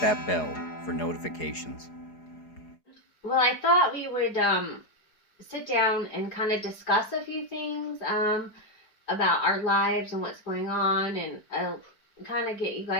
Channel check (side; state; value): right; late; 4.8 ms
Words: bell for notifications. Well, I thought we would sit down and kind of discuss a few things about our lives and what's going on, and kind of get you